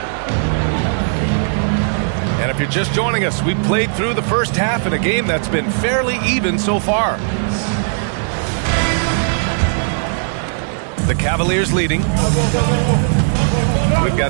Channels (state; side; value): silent; left; digital silence